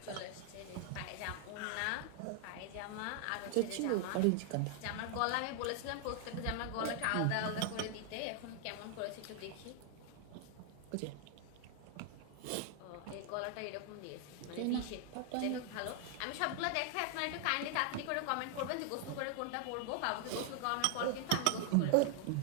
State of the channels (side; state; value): both; different; correlation 0.00